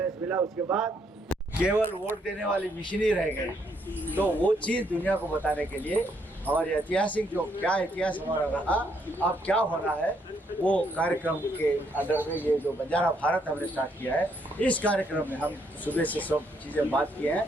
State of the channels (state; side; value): normal; both; correlation 0.73